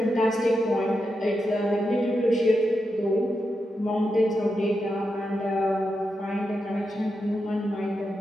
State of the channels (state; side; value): normal; both; correlation 0.87